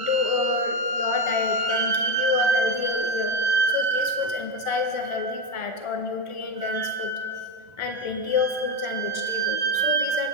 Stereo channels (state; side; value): late; right; 1.4 ms